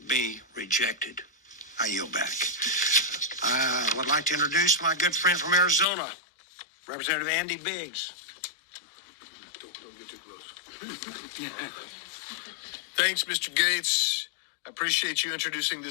be rejected. I yield back. I would like to introduce my good friend from Arizona, Representative Andy Biggs. Don't get too close. Thanks, Mr. Gates. I appreciate you introducing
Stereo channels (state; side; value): drops out; right; at 5.9 s